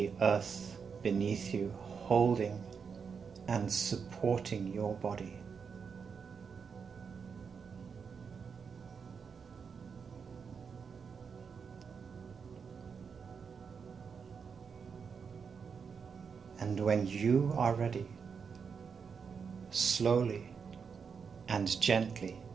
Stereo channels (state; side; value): quieter; left; 6.1 dB